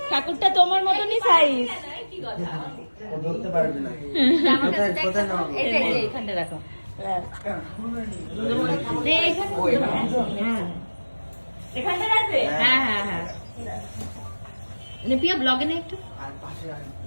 ঠাকুরটা তোমার মতনই সাইজ। ও ধরতে পারবে না। কোথায় কোথায় নাও? এখানটা রাখো। এখানটা রাখবে? হ্যাঁ হ্যাঁ হ্যাঁ। পিয়া ব্লগে না একটু। আর পাশে আর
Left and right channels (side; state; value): both; inverted; correlation -1.00